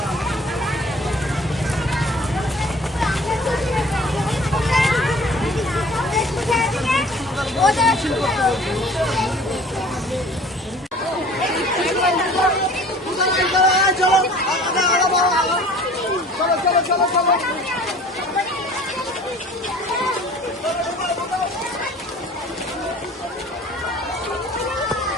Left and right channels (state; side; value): normal; both; correlation 0.48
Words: হবে। মিছিল করতে বলছে। চলো